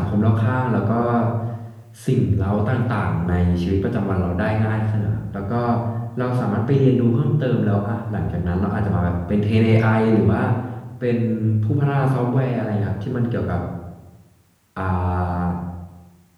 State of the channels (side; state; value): both; identical; correlation 1.00